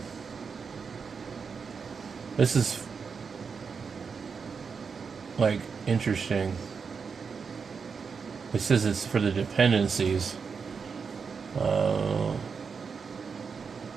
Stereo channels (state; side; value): quieter; left; 5.6 dB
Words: This is like interesting. It says it's for the dependencies.